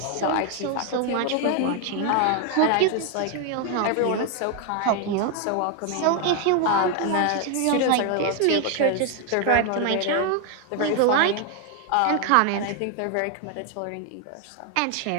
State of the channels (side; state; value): both; different; correlation 0.01